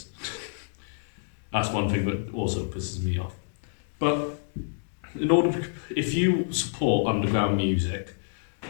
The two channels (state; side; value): silent; right; digital silence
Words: that's one thing that also pisses me off. But if you support underground music,